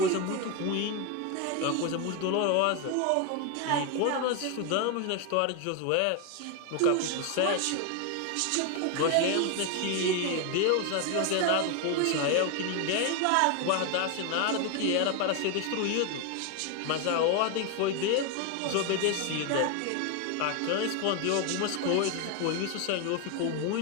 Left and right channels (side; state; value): both; different; correlation 0.01